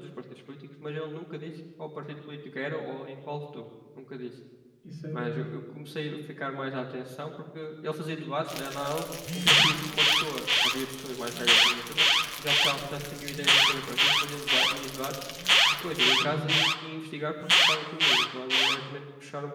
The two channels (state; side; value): identical; both; correlation 1.00